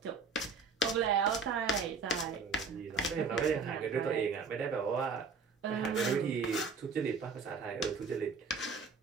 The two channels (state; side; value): quieter; left; 4.8 dB